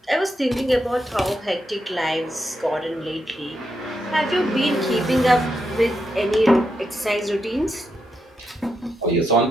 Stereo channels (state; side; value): normal; both; correlation 0.83